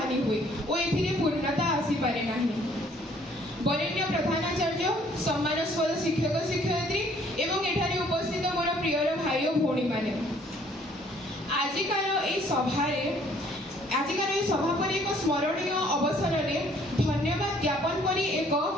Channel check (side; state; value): both; normal; correlation 0.61